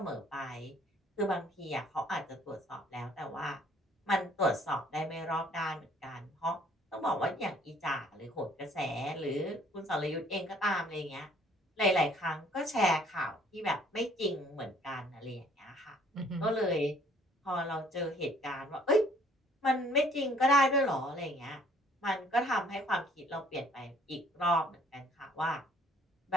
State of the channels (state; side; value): normal; both; correlation 0.59